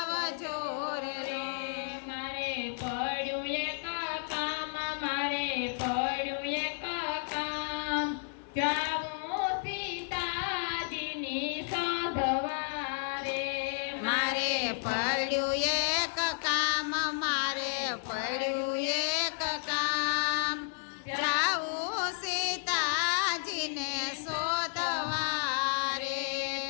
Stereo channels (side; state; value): right; silent; digital silence